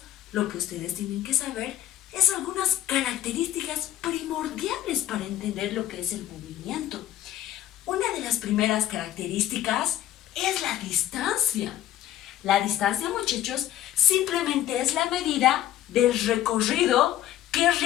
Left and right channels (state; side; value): quieter; right; 12.6 dB